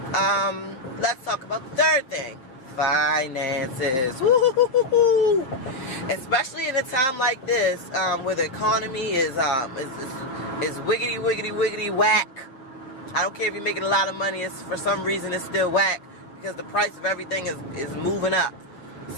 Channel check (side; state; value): right; late; 7.7 ms